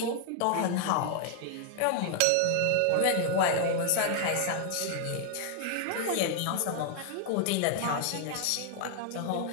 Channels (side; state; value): both; different; correlation 0.00